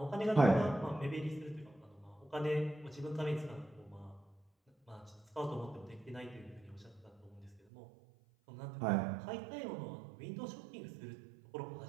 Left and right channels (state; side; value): drops out; left; at 7.6 s